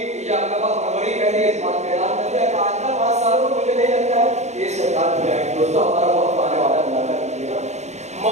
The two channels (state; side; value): late; left; 0.33 ms